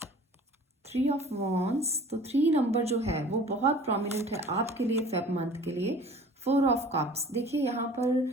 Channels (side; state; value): both; normal; correlation 0.46